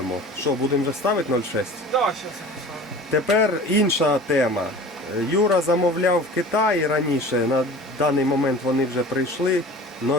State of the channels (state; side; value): normal; both; correlation 0.40